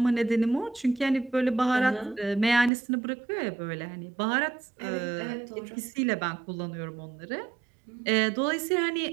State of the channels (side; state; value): left; drops out; at 2.7 s